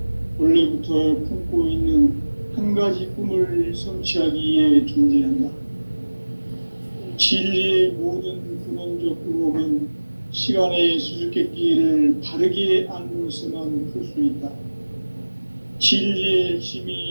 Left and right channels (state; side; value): inverted; both; correlation -1.00